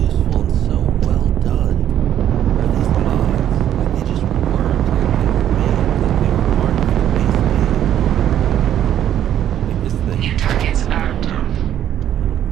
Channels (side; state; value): left; quieter; 10.8 dB